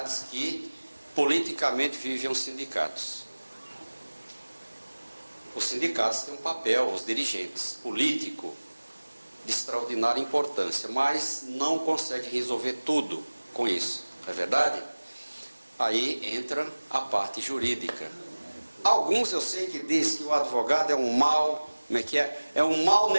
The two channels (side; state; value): both; inverted; correlation -1.00